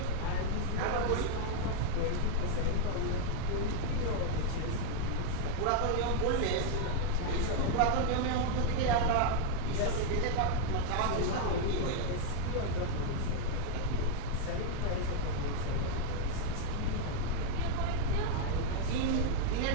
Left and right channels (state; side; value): different; both; correlation 0.00